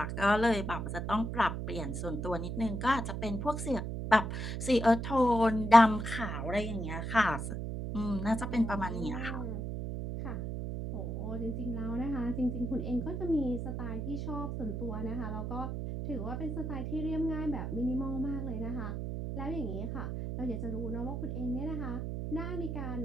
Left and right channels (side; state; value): right; noise; hum, 4 dB below the sound